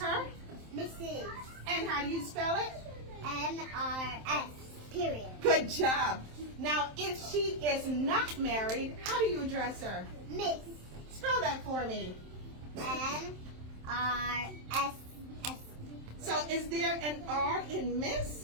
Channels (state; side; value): late; left; 27 ms